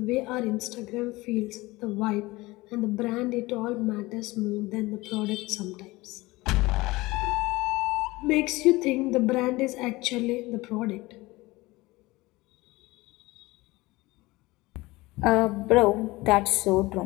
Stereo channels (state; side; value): quieter; right; 20.8 dB